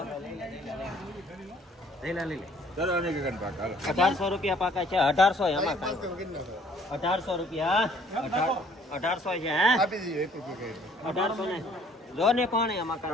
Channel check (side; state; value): both; normal; correlation 0.59